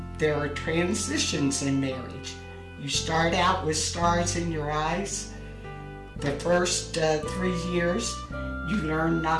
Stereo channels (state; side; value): identical; both; correlation 1.00